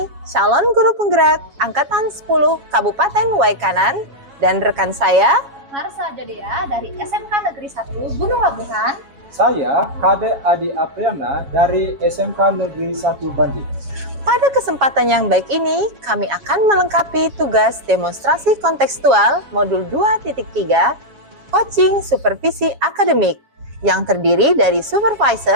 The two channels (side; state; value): left; late; 7.3 ms